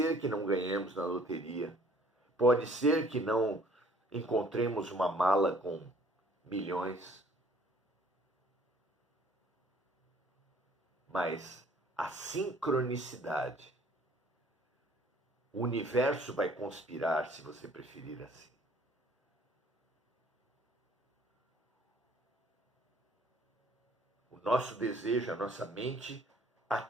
que não ganhemos na loteria, pode ser que não encontremos uma mala com milhões, mas a sincronicidade, o universo vai conspirar, se você preferir assim. O nosso desejo, a nossa mente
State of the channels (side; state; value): both; normal; correlation 0.57